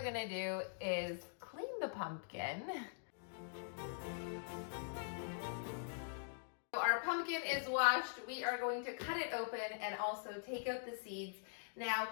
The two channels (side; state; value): right; silent; digital silence